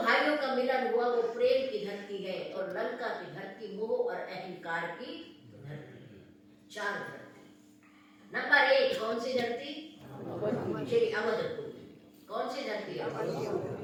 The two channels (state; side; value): identical; both; correlation 1.00